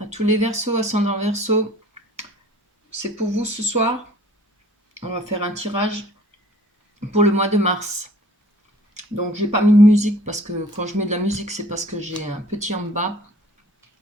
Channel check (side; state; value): both; normal; correlation 0.52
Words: tous les Verseaux, ascendant Verseau. C'est pour vous ce soir. On va faire un tirage pour le mois de mars. Donc j'ai pas mis de musique parce que quand je mets de la musique, c'est parce que j'ai un petit en bas